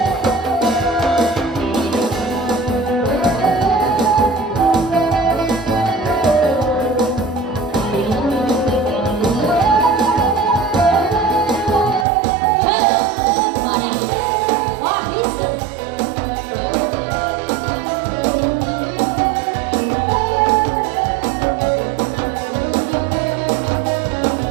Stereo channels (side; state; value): left; drops out; at 12.1 s